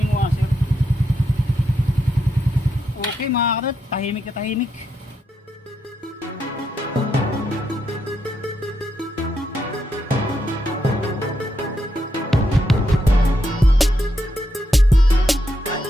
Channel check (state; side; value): normal; both; correlation 0.82